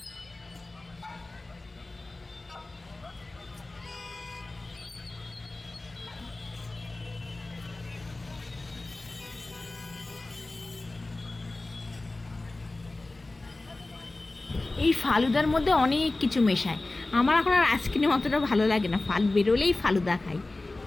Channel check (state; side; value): quieter; right; 3.0 dB